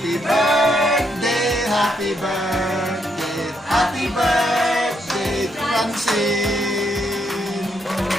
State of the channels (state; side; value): normal; both; correlation 0.76